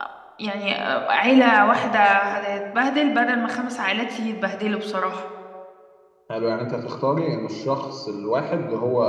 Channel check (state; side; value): identical; both; correlation 1.00